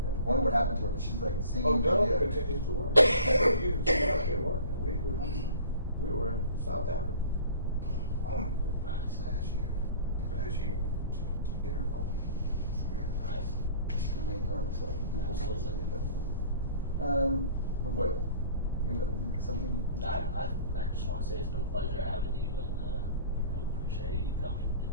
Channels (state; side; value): inverted; both; correlation -0.46